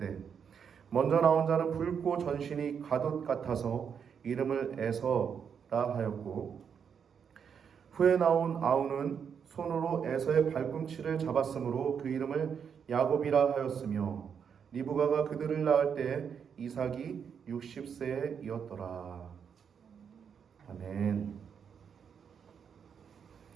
먼저 나온 자는 붉고 전신이 가돛 같아서 이름을 에서라 하였고 후에 나온 아우는 손으로 에서의 발꿈치를 잡았으므로 그 이름을 야곱이라 하였으며 리브가가 그들을 낳을 때 이삭이 60세이었더라. 아멘.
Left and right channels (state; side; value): quieter; left; 7.2 dB